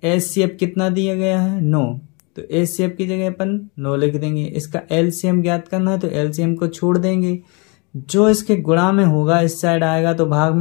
HCF कितना दिया गया है 9, तो HCF की जगह अपन 9 लिख देंगे। इसका LCM ज्ञात करना है तो LCM को छोड़ देंगे, जो इसके गुणा में होगा इस साइड आएगा तो भाग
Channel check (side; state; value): right; quieter; 31.1 dB